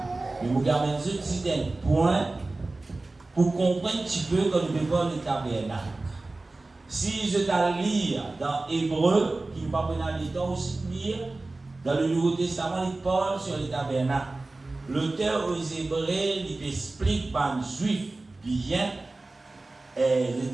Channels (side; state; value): left; quieter; 3.1 dB